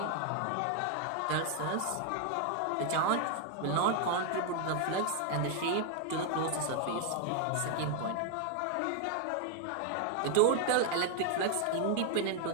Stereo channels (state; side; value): different; both; correlation 0.00